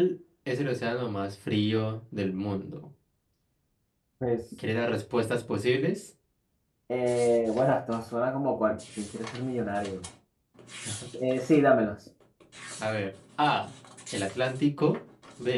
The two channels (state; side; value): identical; both; correlation 1.00